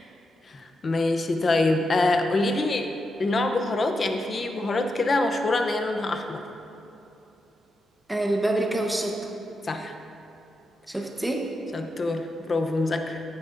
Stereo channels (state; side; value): normal; both; correlation 0.86